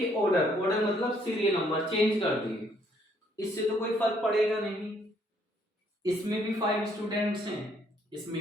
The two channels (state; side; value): normal; both; correlation 0.67